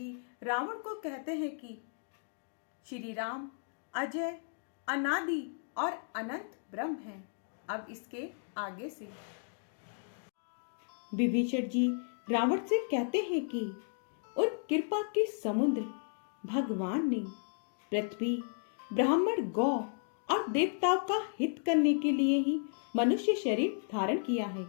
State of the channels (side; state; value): right; silent; digital silence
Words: रावण को कहते हैं कि श्री राम अजय, अनादि और अनंत ब्रह्म हैं। अब इसके आगे से विभीषण जी रावण से कहते हैं कि उन कृपा के समुद्र भगवान ने पृथ्वी, ब्राह्मण, गौ और देवताओं का हित करने के लिए ही मनुष्य शरीर धारण किया है।